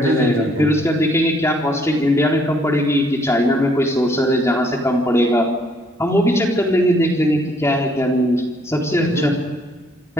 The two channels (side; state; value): both; normal; correlation 0.66